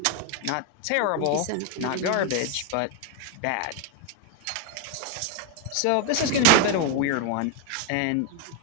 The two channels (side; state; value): both; different; correlation 0.01